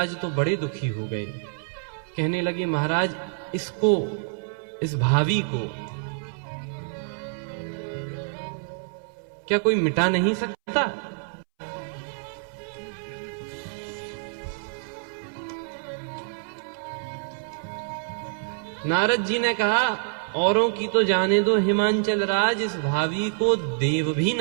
तो बड़े दुखी हो गए। कहने लगे महाराज, इसको, इस भावी को क्या कोई मिटा नहीं सकता? नारद जी ने कहा, औरों की तो जाने दो हिमांचल राज, इस भावी को देव भी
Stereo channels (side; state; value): left; silent; 60 dB below the other